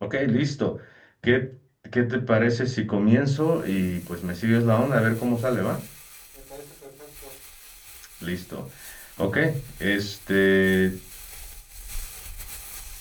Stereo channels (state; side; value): identical; both; correlation 1.00